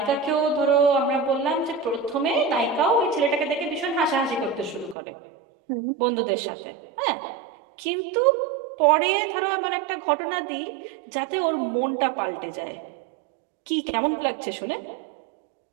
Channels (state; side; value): drops out; left; at 5.0 s